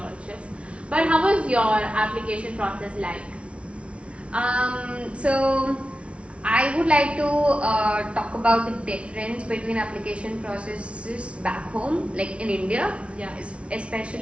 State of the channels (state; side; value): late; left; 0.060 ms